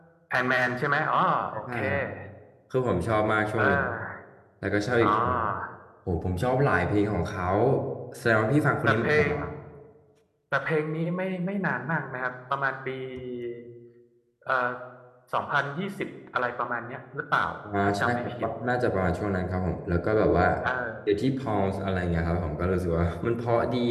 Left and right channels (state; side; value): identical; both; correlation 1.00